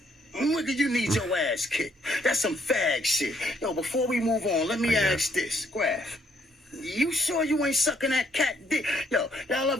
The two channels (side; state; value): both; normal; correlation 0.70